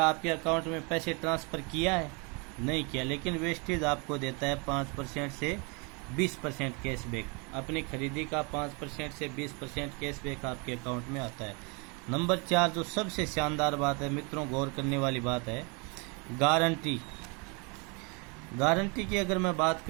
आपके अकाउंट में पैसे ट्रांसफ़र किया है? नहीं किया। लेकिन वेस्टेज आपको देता है 5% से 20% कैशबैक। अपनी खरीदी का 5% से 20% कैशबैक आपके अकाउंट में आता है। नंबर 4 जो सबसे शानदार बात है मित्रों, गौर करने वाली बात है, गारंटी। गारंटी की अगर मैं बात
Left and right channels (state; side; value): quieter; left; 31.9 dB